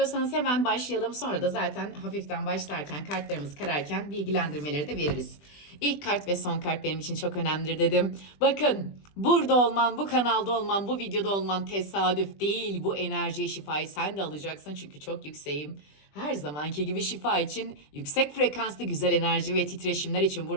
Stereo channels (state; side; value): late; right; 20 ms